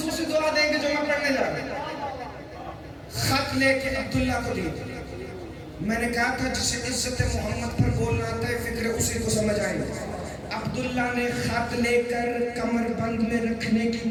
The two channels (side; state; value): both; identical; correlation 1.00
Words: دعا دیں گے جو میں پڑھنے جا رہا ہوں. خط لے کے عبداللہ کو دی. میں نے کہا تھا جسے عزت محمد پر بولنا آتا ہے فکر اسی کو سمجھ آئے. عبداللہ نے خط لے کر کمر بند میں رکھنے